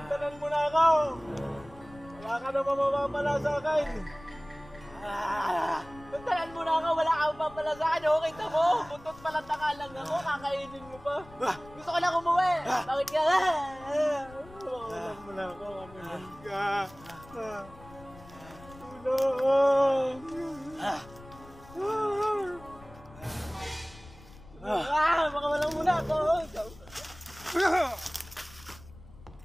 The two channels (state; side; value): noise; left; rumble, 20 dB below the sound